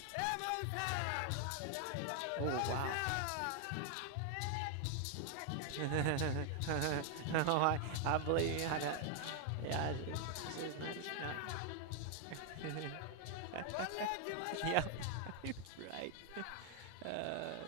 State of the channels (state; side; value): different; both; correlation 0.00